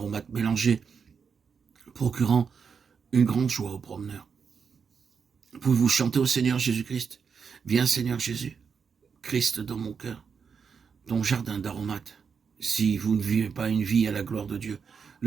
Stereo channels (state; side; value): quieter; left; 6.2 dB